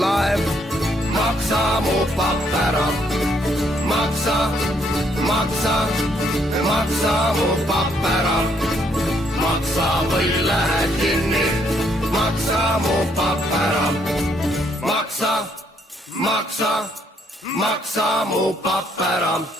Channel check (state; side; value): normal; both; correlation 0.70